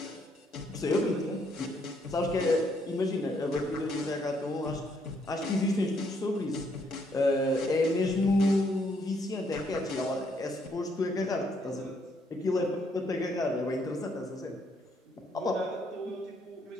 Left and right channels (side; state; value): both; normal; correlation 0.72